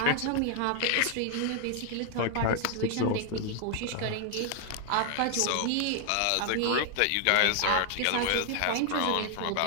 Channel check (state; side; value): different; both; correlation 0.00